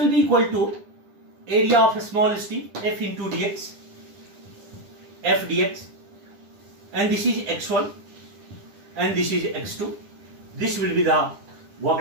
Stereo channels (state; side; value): late; left; 10 ms